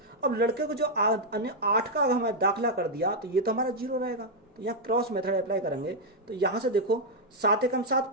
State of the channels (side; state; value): both; normal; correlation -0.02